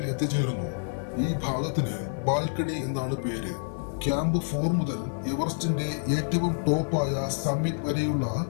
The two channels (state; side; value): silent; right; digital silence